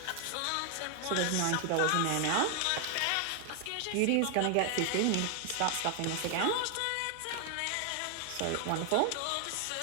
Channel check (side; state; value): both; different; correlation 0.00